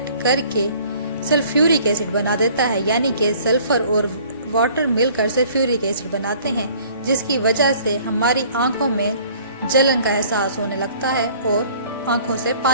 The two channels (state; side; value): inverted; both; correlation -0.54